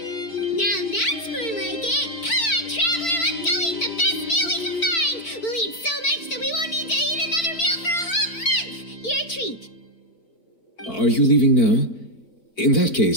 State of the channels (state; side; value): late; right; 4.5 ms